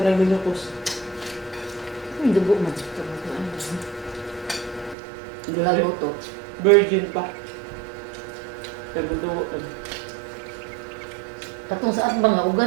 nang binukos. Ang dugo man. Lago to. Virgin pa. Tagudugo. Katong sa atbang nga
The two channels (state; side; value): drops out; left; at 5.0 s